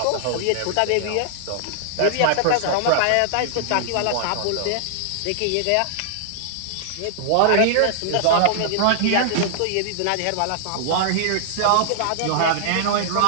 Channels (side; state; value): both; different; correlation -0.01